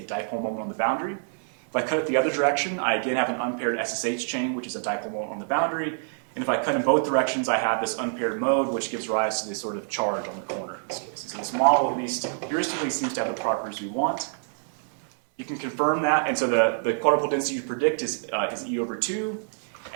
dipole moment on the boundary. If I cut it the other direction, I again have an unpaired SSH chain, which is a dipole moment on the boundary. And if I cut in both directions, I have this unpaired mode, which gives rise to this sort of charge on the corner in this case. So this model, at least heuristically, seems to have the properties we want. You can confirm that, and so the quadrupole density you predict is E over 2.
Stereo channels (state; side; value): silent; left; 61 dB below the other